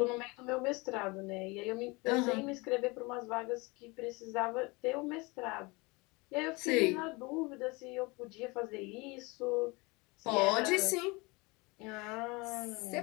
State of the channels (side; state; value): right; quieter; 26.0 dB